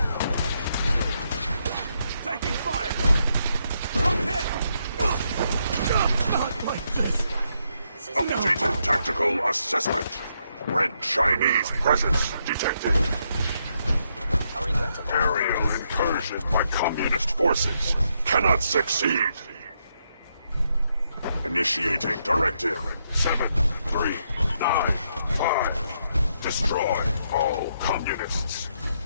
Updated tactical assessment. Red Chinese presence detected. Aerial incursion by communist forces cannot succeed. Initiating directive 7395. Destroy all communists.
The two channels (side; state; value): both; inverted; correlation -0.78